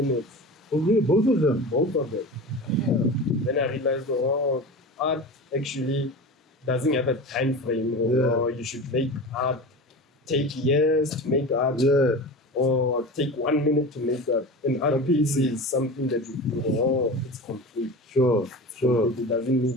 Oh, really? Both of them? Both of them. Yeah. Then I realized, art actually doesn't have a time frame, or you should make art take years to make art, or take 1 minute to make art. An art piece is something that you do, it's complete. Sure. It doesn't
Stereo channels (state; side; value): normal; both; correlation 0.31